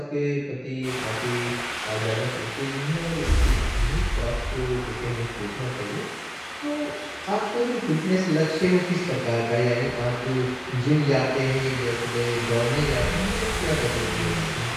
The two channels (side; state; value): both; identical; correlation 1.00